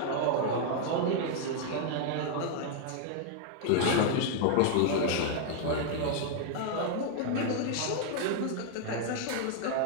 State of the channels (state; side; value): different; both; correlation 0.00